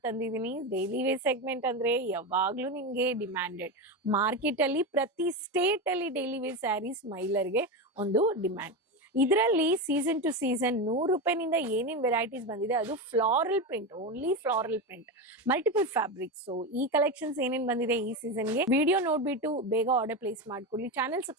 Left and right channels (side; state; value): both; normal; correlation 0.17